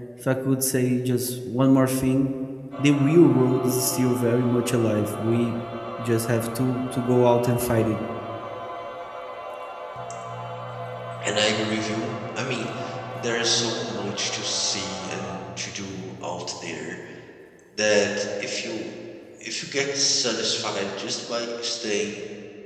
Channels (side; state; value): both; identical; correlation 1.00